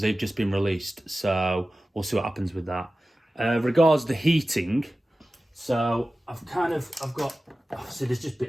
they've just been released. So we'll see what happens with that. Regards the heating, so I've got, see there's just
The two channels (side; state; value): both; normal; correlation 0.95